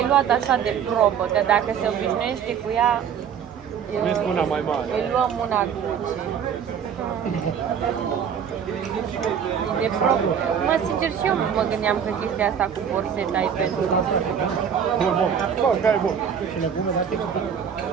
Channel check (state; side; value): quieter; left; 7.8 dB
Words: luat așa de probă, că dacă se obișnuiește cu ea, Vezi una mai mare. îi luăm una Gucci. De pro... Mă, sincer, și eu mă gândeam că chestia asta cu borseta e pentru... Bun, bun. Bă, care e bun? Și legume, dar te explic.